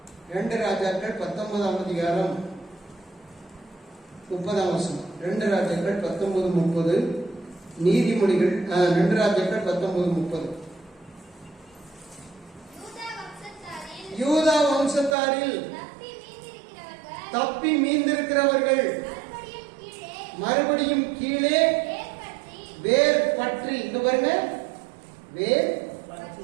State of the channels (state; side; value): drops out; left; at 15.2 s